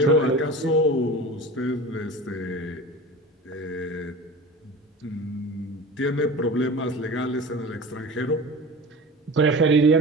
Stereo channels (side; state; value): both; normal; correlation 0.34